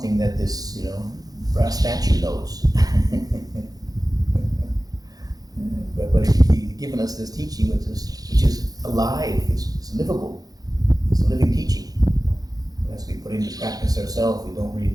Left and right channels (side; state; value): left; late; 0.18 ms